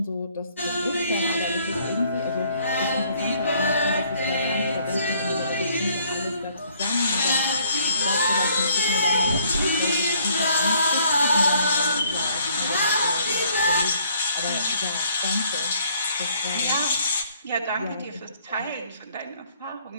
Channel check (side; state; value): both; inverted; correlation -0.63